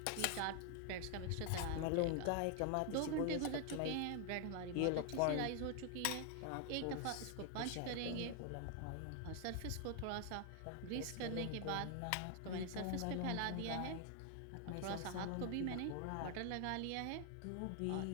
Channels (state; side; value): different; both; correlation 0.00